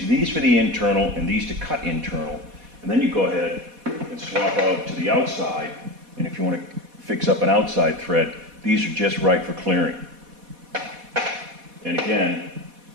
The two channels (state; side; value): late; left; 4.1 ms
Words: these for the internal and these to cut internal. And then you go ahead and swap out to the outside. And if you want to fix up an outside thread, these are just right for clearing. And again,